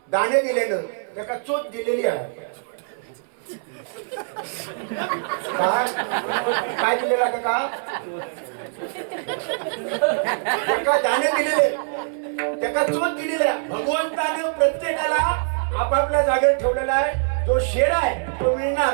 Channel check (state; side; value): silent; left; 61 dB below the other